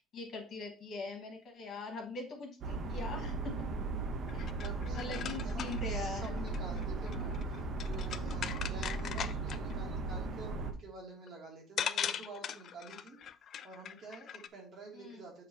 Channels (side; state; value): both; normal; correlation 0.42